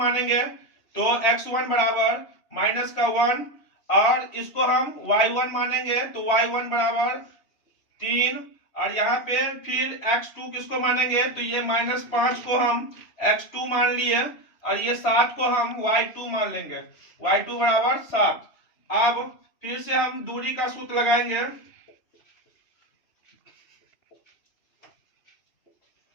तो x1 बराबर -1, और इसको हम y1 मानेंगे तो y1 बराबर 3, और यहाँ पे फिर x2 किसको मानेंगे तो ये -5 को हम x2 मान लिए, और ये 7 को हम y2 मान लेंगे, y2 बराबर 7। अब फिर से हम दूरी का सूत्र लगाएंगे।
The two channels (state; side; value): late; right; 3.0 ms